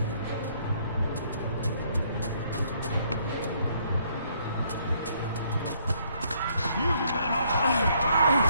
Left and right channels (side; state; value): both; inverted; correlation -0.68